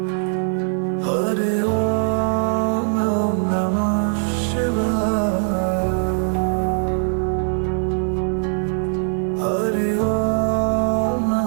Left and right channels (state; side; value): silent; left; 65 dB below the other